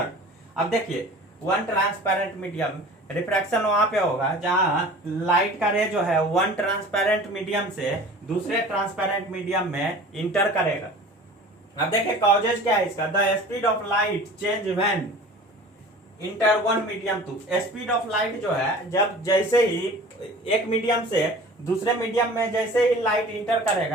अब देखिए वन ट्रांसपेरेंट मीडियम, रिफ्रैक्शन वहां पे होगा जहां लाइट का रे जो है वन ट्रांसपेरेंट मीडियम से दूसरे ट्रांसपेरेंट मीडियम में इंटर करेगा। अब देखिए कॉजेज क्या है इसका? The speed of light change when enter one medium to. Speed of light जो है जब जैसे ही एक मीडियम से दूसरे मीडियम में जैसे ही लाइट इंटर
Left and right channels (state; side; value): normal; both; correlation 0.42